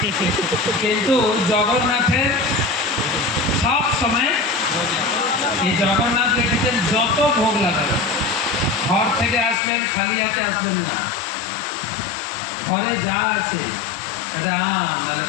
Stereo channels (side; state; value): right; drops out; at 9.6 s